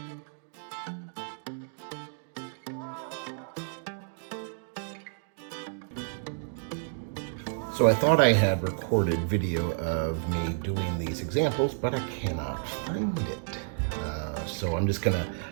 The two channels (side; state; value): left; silent; digital silence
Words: I thought I had recorded video of me doing these examples, but I cannot find it. So I'm just gonna,